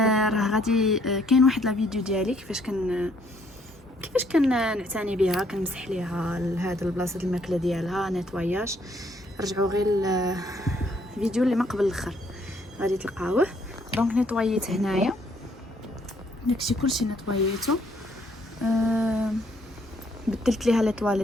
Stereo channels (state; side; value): normal; both; correlation 0.67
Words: غادي كاين واحد لا فيديو ديالي كيفاش كان نعتني بها، كنمسح ليها لهذا البلاصه الماكله ديالها نيطواياج. رجعوا غير الفيديو اللي ما قبل الاخر غادي تلقاوه. دونك نيطويت هنايا داكشي كلشي نيطويتو. بدلت ليها لي